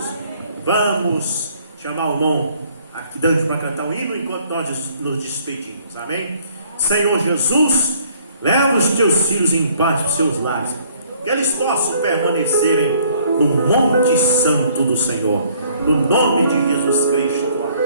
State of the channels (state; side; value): inverted; both; correlation -0.61